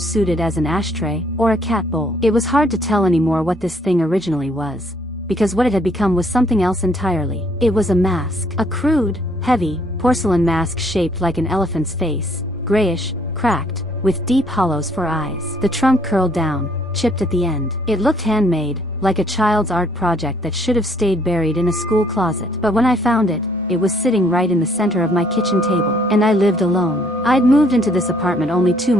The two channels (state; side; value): normal; both; correlation 0.65